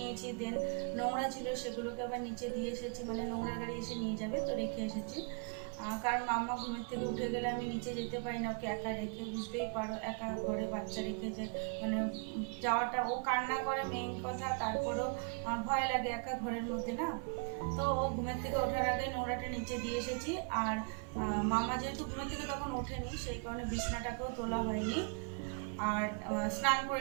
দেন নোংরা ছিল সেগুলোকে আবার নিচে দিয়ে এসেছি, নোংরা গাড়ি এসে নিয়ে যাবে তো রেখে এসেছি। কারণ মাম্মা ঘুমের থেকে উঠে গেলে আমি নিচে যেতে পারি না, ওকে একা রেখে, বুঝতেই পারো একা ঘরে বাচ্চা রেখে যে যাওয়াটা, ও কান্না করে মেইন কথা, তারপরেও ভয় লাগে একা ঘরের মধ্যে না। তো ও ঘুমের থেকে ওঠার আগে নোংরাটা নিচে দিয়ে এসেছি। আর মামা যেহেতু ঘুমের থেকে তখন ওঠেনি, সেই কারণে বিছনাটাকেও তোলা হয়নি। আর স্নান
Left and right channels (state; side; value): quieter; left; 38.1 dB